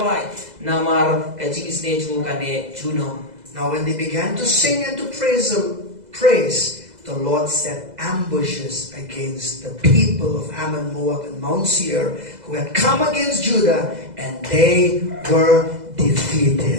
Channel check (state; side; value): late; left; 2.0 ms